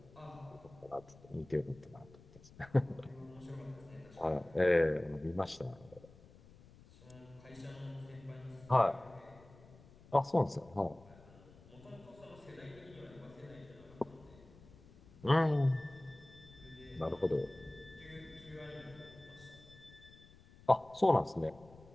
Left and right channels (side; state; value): left; noise; rumble, 22 dB below the sound